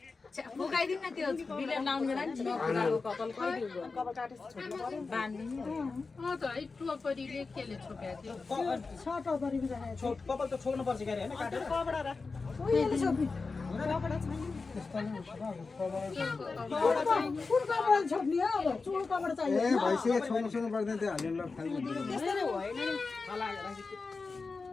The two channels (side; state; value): right; quieter; 4.2 dB